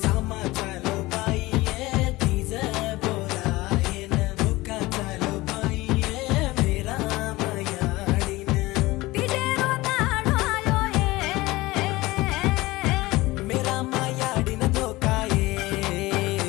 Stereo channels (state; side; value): quieter; right; 20.0 dB